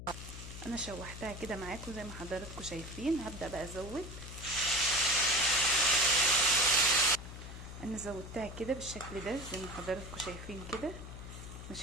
انا شوحتها كده معاكم زي ما حضراتكم شايفين. هبدا بقى ازود. انا زودتها كده بالشكل ده زي ما حضراتكم شايفين كده.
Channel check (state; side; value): noise; left; hum, 11 dB below the sound